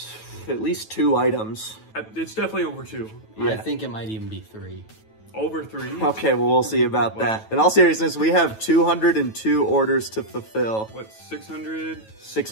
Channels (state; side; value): late; right; 9.2 ms